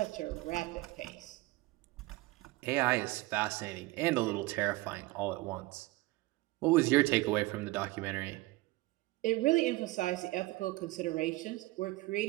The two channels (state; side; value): quieter; left; 20.3 dB